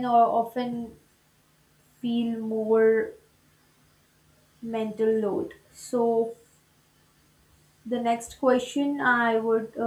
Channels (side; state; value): both; identical; correlation 1.00